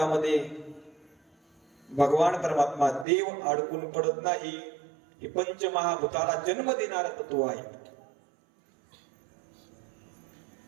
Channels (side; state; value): left; drops out; at 3.1 s